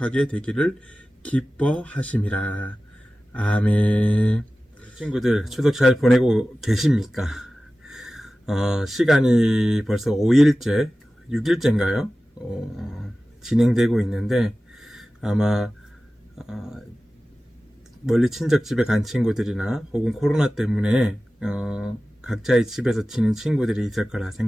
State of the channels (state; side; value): normal; both; correlation 0.96